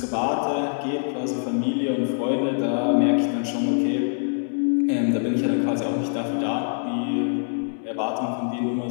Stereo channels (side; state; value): right; silent; 62 dB below the other